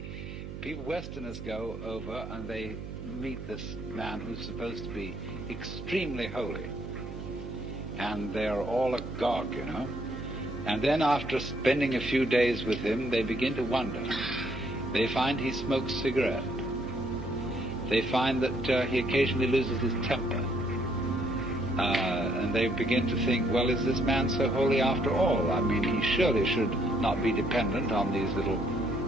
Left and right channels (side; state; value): right; noise; hum, 9 dB below the sound